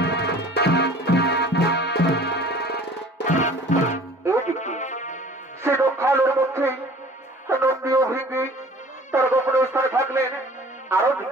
সে দক্ষালের মধ্যে নন্দী ও ভৃঙ্গি তার গোপনে স্থানে থাকলেন। আরো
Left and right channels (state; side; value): normal; both; correlation 0.48